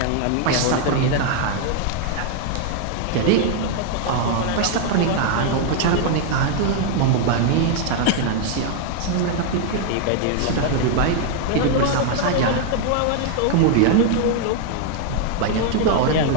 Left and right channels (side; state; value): both; different; correlation 0.00